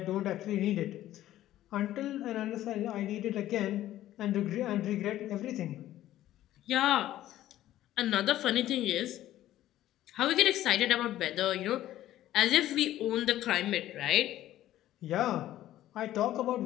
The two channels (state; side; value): quieter; right; 13.7 dB